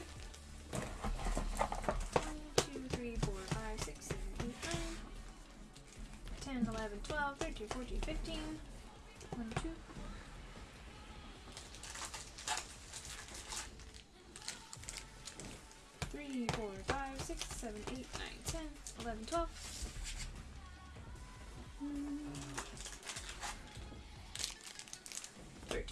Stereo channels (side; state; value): both; identical; correlation 1.00